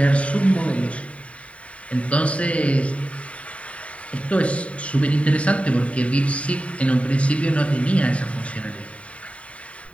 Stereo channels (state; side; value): late; right; 0.065 ms